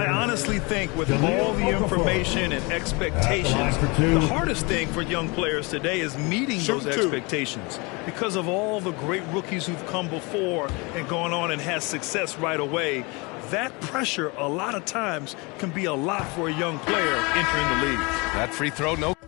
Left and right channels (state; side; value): quieter; right; 27.8 dB